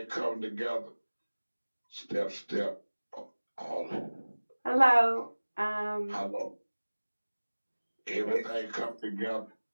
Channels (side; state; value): both; inverted; correlation -1.00